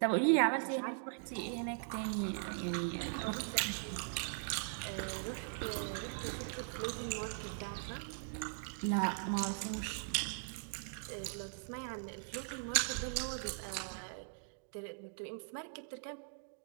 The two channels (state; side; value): silent; left; digital silence